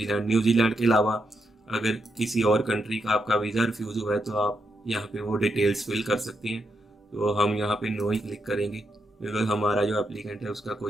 New Zealand के अलावा अगर किसी और कंट्री का आपका वीज़ा रिफ्यूज़ हुआ है तो आप यहाँ पे वो डिटेल्स फिल कर सकते हैं। तो हम यहाँ पे नो ही क्लिक करेंगे बिकॉज हमारा जो एप्लीकेंट है उसका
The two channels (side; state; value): both; normal; correlation 0.82